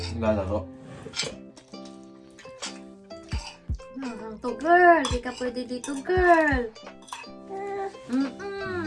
Lalaro. Hanggang to, girl. Di ka pwede dito, girl.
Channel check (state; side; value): identical; both; correlation 1.00